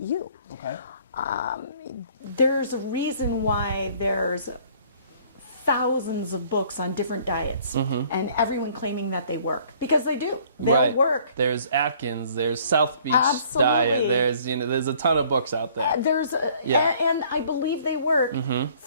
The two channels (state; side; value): inverted; both; correlation -0.58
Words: you. Okay. There's a reason why there's thousands of books on different diets, and everyone claiming that they work, because they do. They'll work. There's Atkins, there's South Beach diet, there's a ton of books out there. And I believe they work